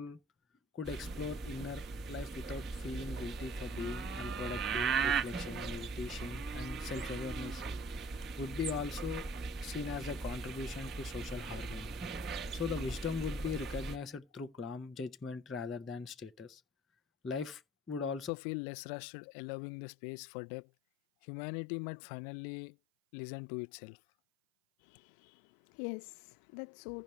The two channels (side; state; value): right; drops out; at 18.3 s